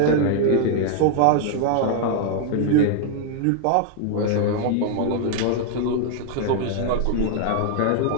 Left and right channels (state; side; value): different; both; correlation 0.00